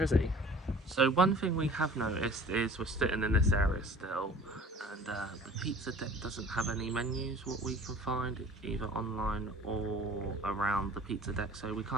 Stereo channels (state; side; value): normal; both; correlation 0.47